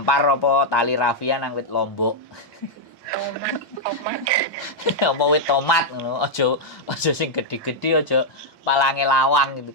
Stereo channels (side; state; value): both; normal; correlation -0.04